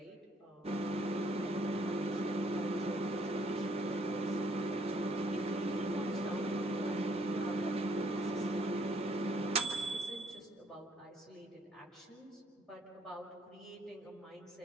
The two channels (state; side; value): normal; both; correlation 0.66